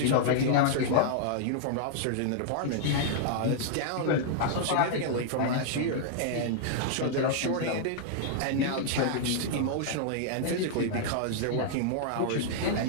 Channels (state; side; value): different; both; correlation -0.01